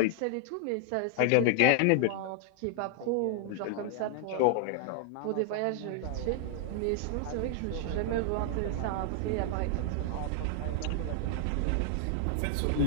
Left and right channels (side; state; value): both; different; correlation 0.00